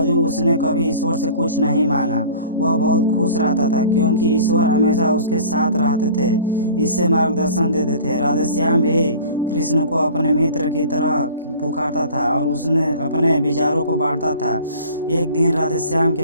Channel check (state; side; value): inverted; both; correlation -0.44